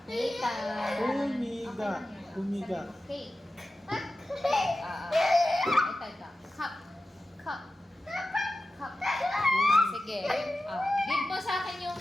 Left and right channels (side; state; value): both; normal; correlation 0.94